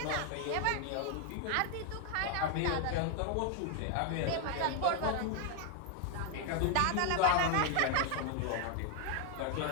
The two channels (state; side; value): different; both; correlation 0.00